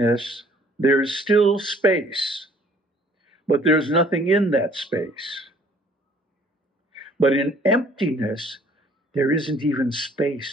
there's still space, but there's nothing in that space. But in emptiness, there isn't even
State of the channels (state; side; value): normal; both; correlation 0.58